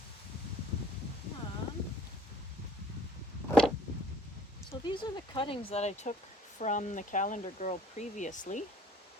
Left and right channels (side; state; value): both; normal; correlation 0.55